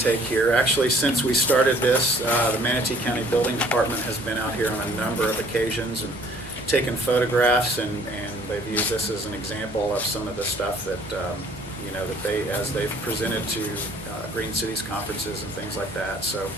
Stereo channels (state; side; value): normal; both; correlation 0.57